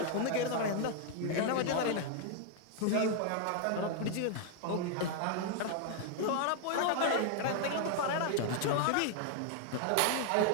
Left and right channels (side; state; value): both; different; correlation 0.00